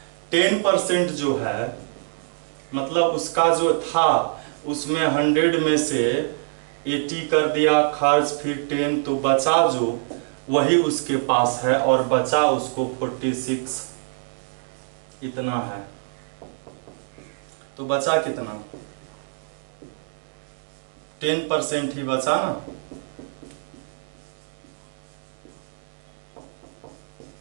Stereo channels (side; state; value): left; silent; digital silence